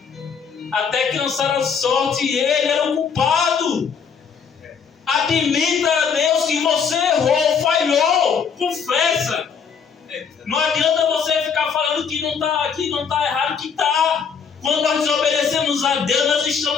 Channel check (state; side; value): quieter; right; 6.4 dB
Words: Até que lançaram a sorte e ele era o culpado. Admita a Deus que você errou, falhou, confessa. Não adianta você ficar falando que não está errado, que está. Quando nós desobedecemos a Deus, nós